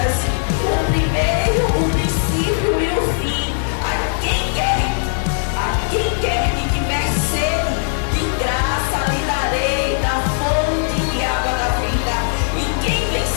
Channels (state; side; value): silent; right; 66 dB below the other